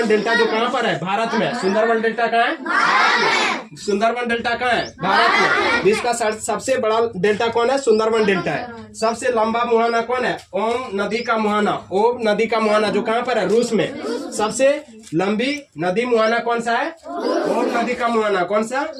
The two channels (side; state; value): both; identical; correlation 1.00